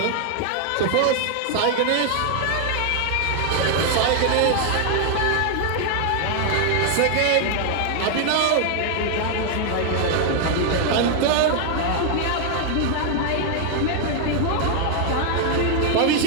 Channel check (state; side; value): different; both; correlation 0.00